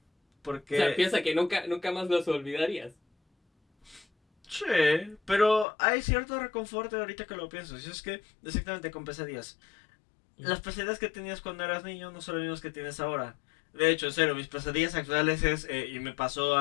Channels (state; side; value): drops out; right; at 5.7 s